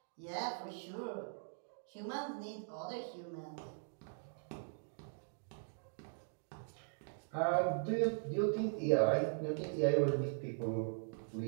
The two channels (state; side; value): silent; left; digital silence